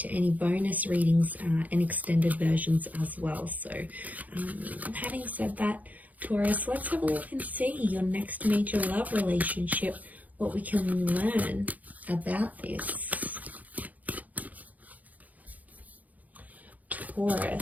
any bonus readings and extended versions as well. So having said that, Taurus, let's have a look and see your next major love relationship, what we can learn about this.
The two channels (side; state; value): left; late; 0.078 ms